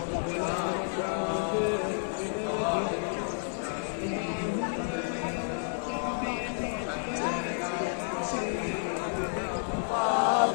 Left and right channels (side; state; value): right; silent; digital silence